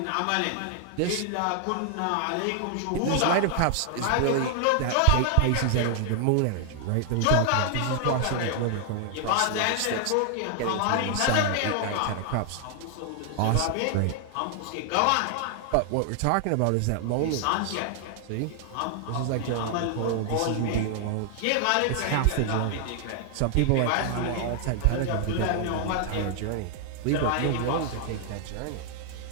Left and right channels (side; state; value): both; different; correlation 0.00